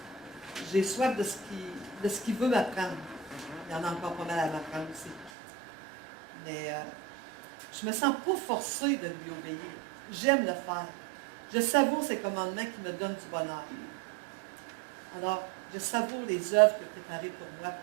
J'ai soif de ce qu'il veut m'apprendre. Il y en a encore pas mal à m'apprendre aussi. Mais je ne me sens pas forcée de lui obéir. J'aime le faire. Je savoure ses commandements qui me donnent du bonheur. Alors, je savoure les œuvres qu'il a préparées pour moi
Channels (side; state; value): left; drops out; at 5.3 s